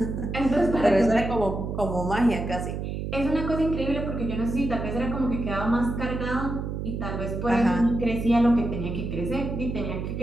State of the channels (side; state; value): right; noise; hum, 4 dB below the sound